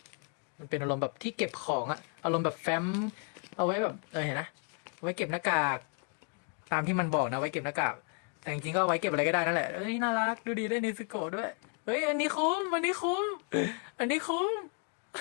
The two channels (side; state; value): right; quieter; 40.0 dB